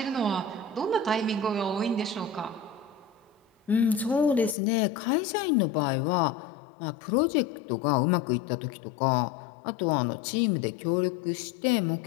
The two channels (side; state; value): right; drops out; at 4.5 s